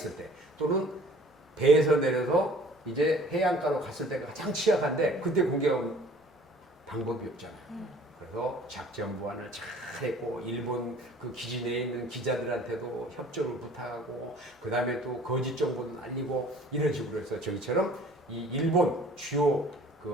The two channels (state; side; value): normal; both; correlation 0.51